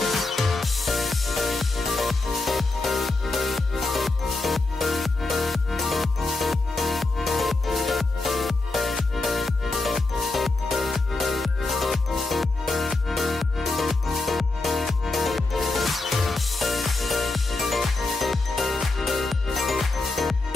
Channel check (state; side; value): quieter; right; 3.2 dB